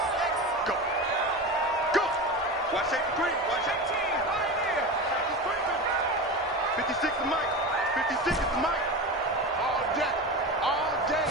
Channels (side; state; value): both; normal; correlation 0.25